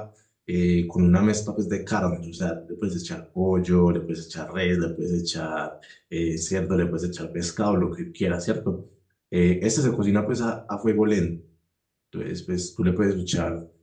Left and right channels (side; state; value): both; identical; correlation 1.00